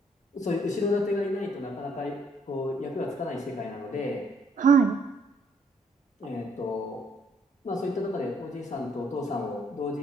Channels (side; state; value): both; normal; correlation 0.67